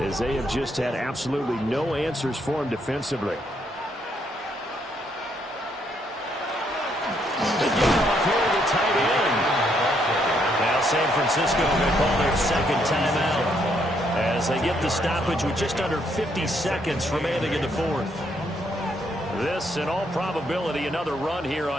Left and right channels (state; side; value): normal; both; correlation 0.73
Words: they have just had absolutely no answers for him defensively. They get off here to the tight end. Now San Francisco going to call their 2nd timeout as they get the stoppage with just under 50 seconds remaining in the 4th. This, in all probability, another run here